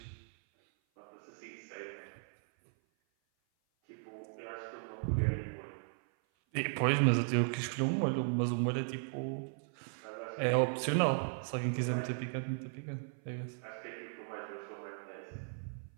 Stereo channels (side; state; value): left; silent; 53 dB below the other